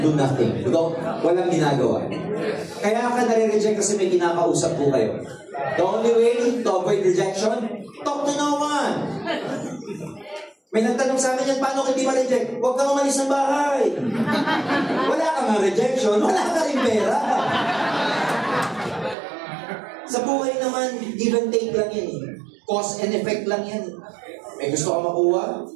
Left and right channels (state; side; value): drops out; left; at 19.2 s